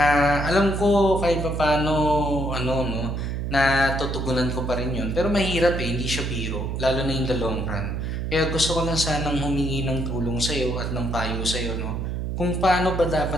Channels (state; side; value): noise; right; hum, 3 dB below the sound